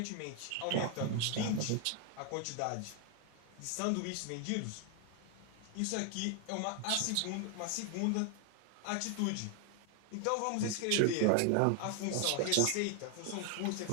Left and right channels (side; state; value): both; different; correlation 0.00